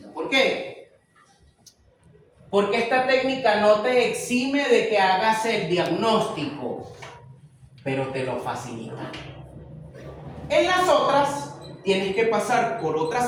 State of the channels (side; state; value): both; identical; correlation 1.00